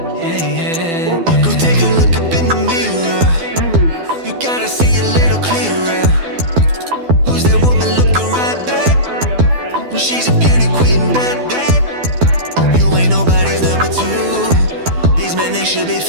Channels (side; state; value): left; late; 12 ms